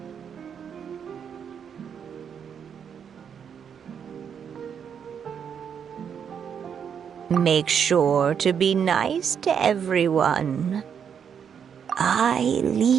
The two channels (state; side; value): quieter; left; 7.6 dB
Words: Make sure to be nice to everyone. I